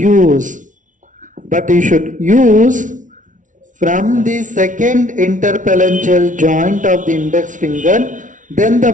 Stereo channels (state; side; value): late; left; 0.37 ms